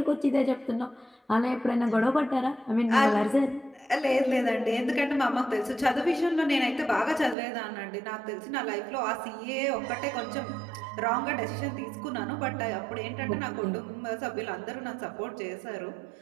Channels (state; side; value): drops out; left; at 7.4 s